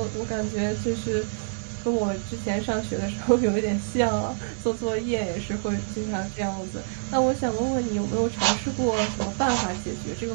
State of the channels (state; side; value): silent; left; digital silence